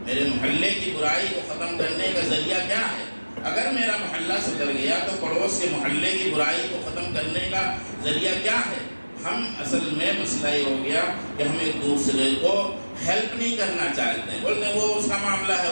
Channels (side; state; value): both; inverted; correlation -1.00